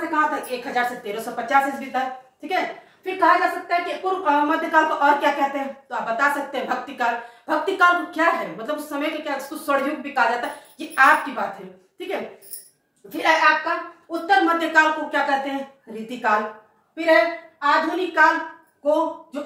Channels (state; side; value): identical; both; correlation 1.00